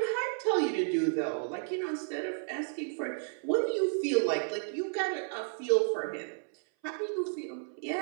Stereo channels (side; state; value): left; silent; 56 dB below the other